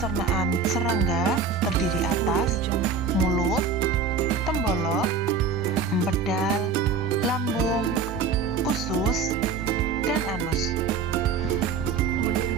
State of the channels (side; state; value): left; quieter; 5.3 dB